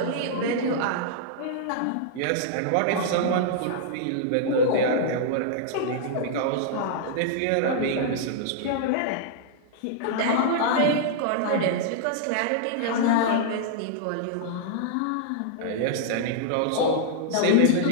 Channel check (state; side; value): different; both; correlation -0.01